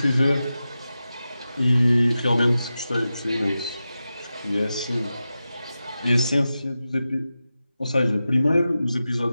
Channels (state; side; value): inverted; both; correlation -0.93